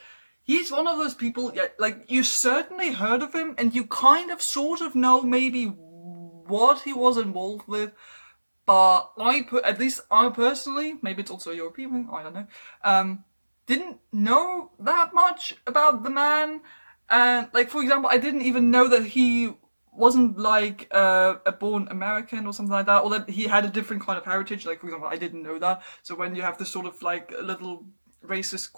he's one of those people, like, you certainly heard of him, and you kind of sort of know maybe what he was involved with, but at least I personally, maybe it's also your opinion, I don't know, didn't know that much about the man. And, like, for example, I didn't even know that he wasn't like a born American or something like that, or that he had a different kind of heritage. Like, for example, I didn't know that. So when you have this sort of like little racist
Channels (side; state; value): both; inverted; correlation -1.00